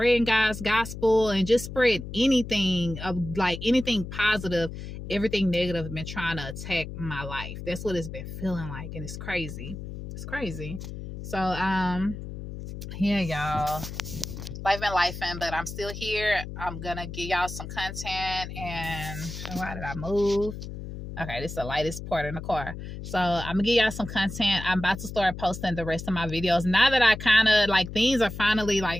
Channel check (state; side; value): noise; left; hum, 9 dB below the sound